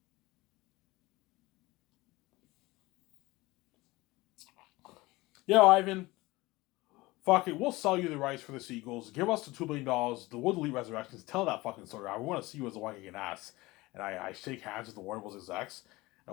Yeah, Ivan. Fuck it, we'll sell you the rights for the sequels. Give us the $2 billion. The Wood Elite Resurrections. Tell that fucking story. I want to see you as the one kicking ass. And I shake hands with the Warner Bros. Execs.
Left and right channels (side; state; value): right; quieter; 20.8 dB